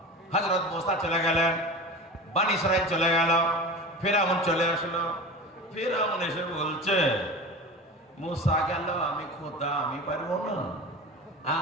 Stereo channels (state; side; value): normal; both; correlation 0.32